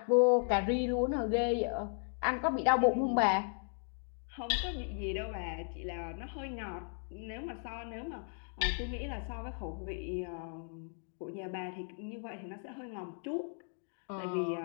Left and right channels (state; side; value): silent; right; 54 dB below the other